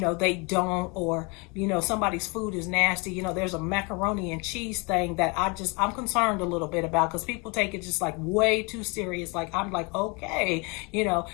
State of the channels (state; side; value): quieter; right; 29.9 dB